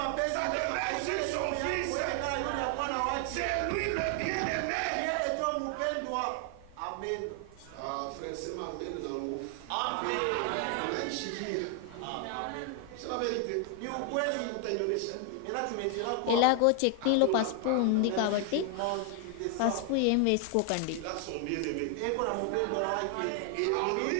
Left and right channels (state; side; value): different; both; correlation 0.00